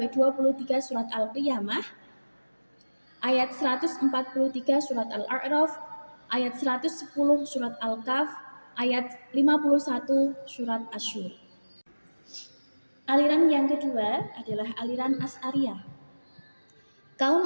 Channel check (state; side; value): inverted; both; correlation -1.00